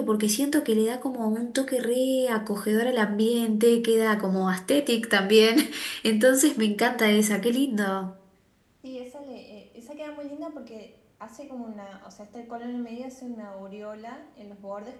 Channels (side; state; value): both; identical; correlation 1.00